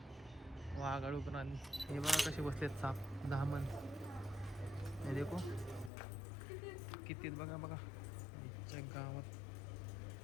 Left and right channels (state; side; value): drops out; right; at 5.9 s